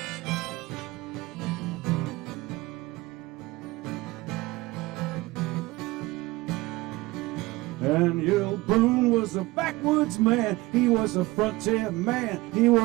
Daniel Boone was a backwoods man. He was a frontier man. He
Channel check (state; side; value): quieter; left; 20.5 dB